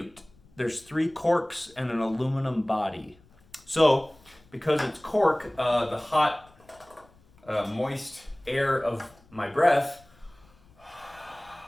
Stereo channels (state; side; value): noise; left; rumble, 29 dB below the sound